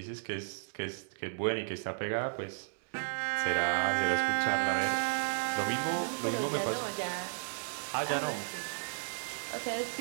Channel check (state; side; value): silent; left; digital silence